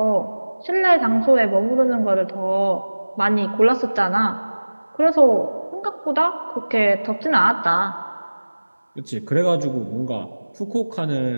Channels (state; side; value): inverted; both; correlation -1.00